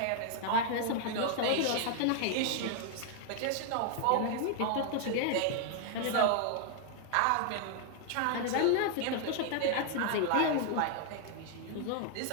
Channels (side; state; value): both; different; correlation 0.00